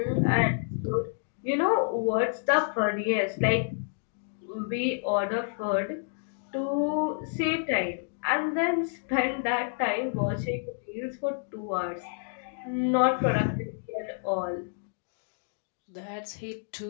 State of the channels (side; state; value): right; silent; digital silence